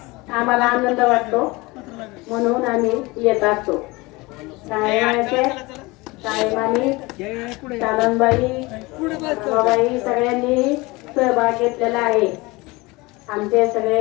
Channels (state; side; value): quieter; right; 23.2 dB